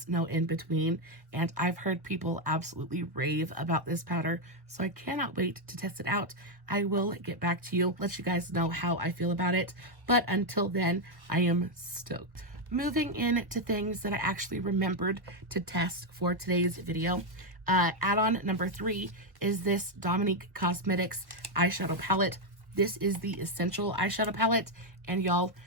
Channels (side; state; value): left; late; 1.3 ms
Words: no in between, and I've heard people absolutely rave about this powder, so I cannot wait to test it out. I will get back to you, let you guys know how I feel about it, but until then, I am stoked. Moving into things that I actually remembered to test for today's video. Add-on number 3 is this Dominique Cosmetics eyeshadow palette. This is the Essential eyeshadow palette, and y'all,